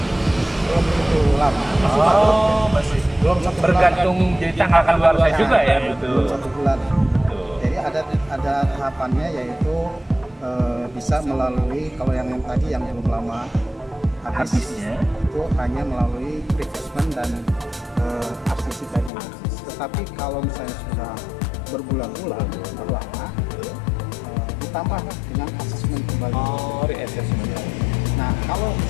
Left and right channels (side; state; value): right; drops out; at 19.1 s